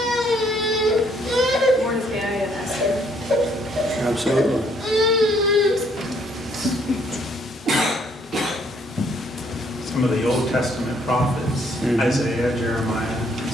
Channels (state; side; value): normal; both; correlation 0.67